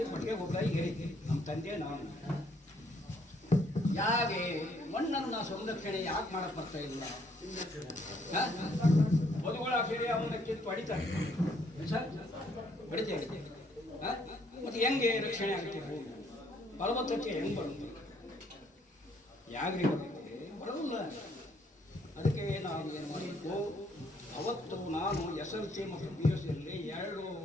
ಕೊಟ್ಟಿಗೆ ಗೊಬ್ಬರ ಏರಿದ್ದೆ ನಮ್ಮ ತಂದೆ ನಾನು. ಯಾಕೆ ಮಣ್ಣನ್ನು ಸಂರಕ್ಷಣೆ ಯಾಕೆ ಮಾಡಕ್ ಬರ್ತಾ ಇಲ್ಲ? ಹೊಲಗಳ ಬೇರೆ ಅವನ್ನ ಕಿತ್ತು ಹೊಡಿತಾರೆ ಸರ್, ಹೊಡಿತೇವೆ. ಮತ್ತೆ ಹೆಂಗೆ ರಕ್ಷಣೆ ಆಗುತ್ತೆ? ಭೂಮಿ ಫಲವತ್ತತೆ ಹೆಂಗೆ ಬರುತ್ತೆ? ಯಾಗ್ರಿ ಬರುತ್ತೆ? ಬರೋಲ್ಲ. ಅದಕ್ಕೆ ನಾವು ಏನು ಮಾಡಬೇಕು? ಅವತ್ತು ನಾನು SLC ಮತ್ತು BSc 2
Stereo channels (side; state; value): both; normal; correlation 0.67